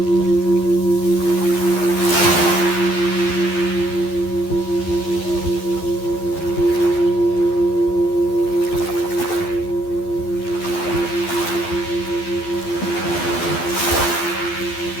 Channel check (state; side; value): late; right; 12 ms